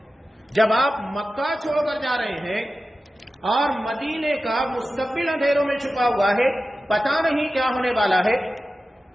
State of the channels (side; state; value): both; normal; correlation 0.94